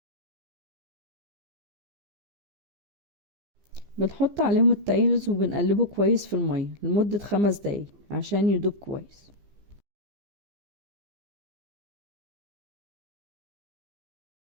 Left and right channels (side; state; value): left; late; 15 ms